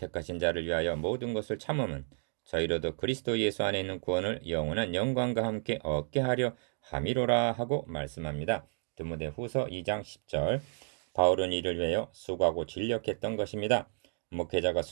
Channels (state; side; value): silent; left; digital silence